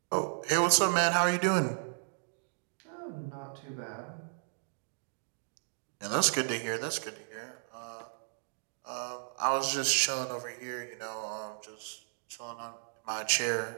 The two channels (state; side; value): silent; left; digital silence